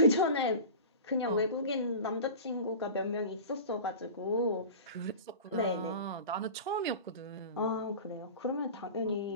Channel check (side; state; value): both; inverted; correlation -0.35